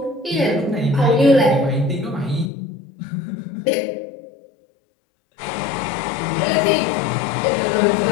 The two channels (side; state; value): right; drops out; at 2.5 s